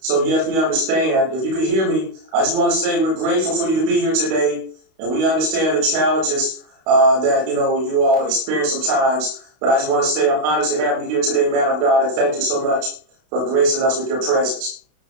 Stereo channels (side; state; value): left; late; 31 ms